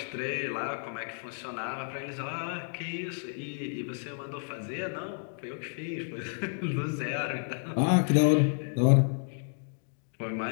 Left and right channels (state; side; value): silent; right; digital silence